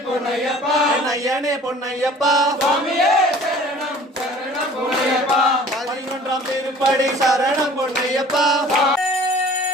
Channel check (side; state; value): both; normal; correlation 0.48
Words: பொன்னையப்பா ஐயனே பொன்னையப்பா சுவாமியே சரணம் சரணம் பொன்னையப்பா 11ஆம் திருப்படி சரணம் பொன்னையப்பா